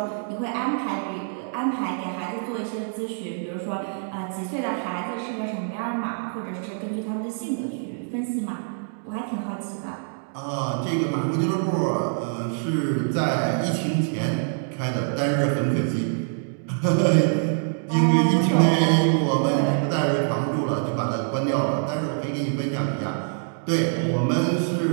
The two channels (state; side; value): silent; left; digital silence